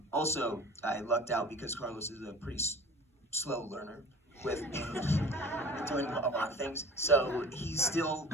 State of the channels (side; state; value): both; normal; correlation 0.42